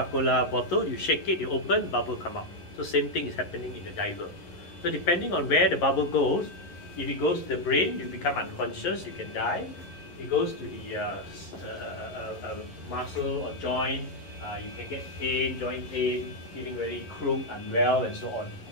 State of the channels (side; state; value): right; late; 11 ms